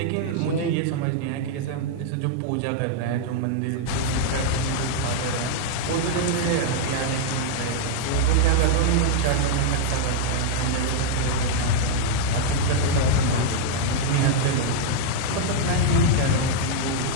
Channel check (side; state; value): both; different; correlation -0.01